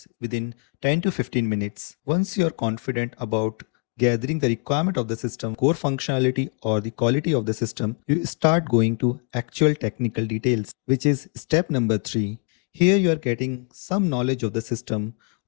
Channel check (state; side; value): quieter; right; 36.5 dB